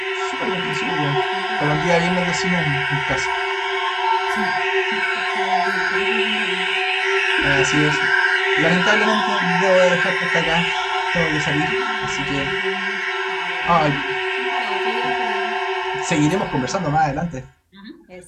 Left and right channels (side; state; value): both; identical; correlation 1.00